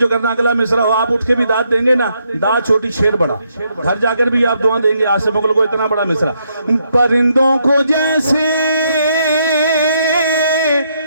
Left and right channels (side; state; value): both; inverted; correlation -0.76